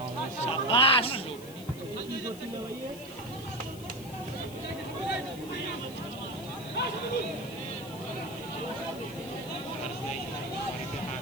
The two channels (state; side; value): noise; left; hiss, 17 dB below the sound